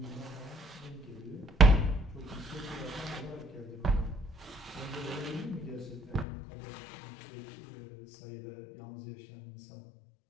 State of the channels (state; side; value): drops out; right; at 6.2 s